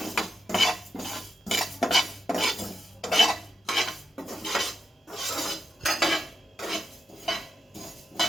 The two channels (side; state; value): both; normal; correlation 0.87